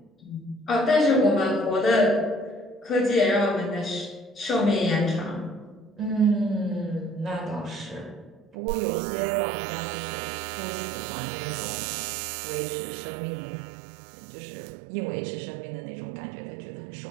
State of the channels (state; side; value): drops out; left; at 8.6 s